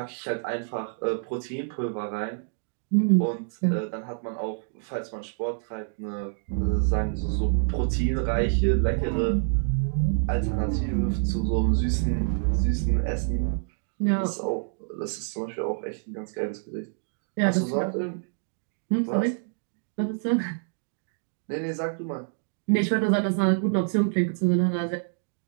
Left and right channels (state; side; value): silent; left; digital silence